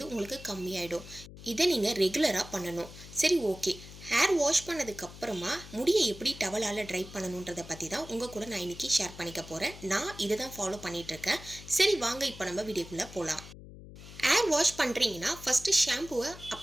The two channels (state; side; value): noise; left; hum, 16 dB below the sound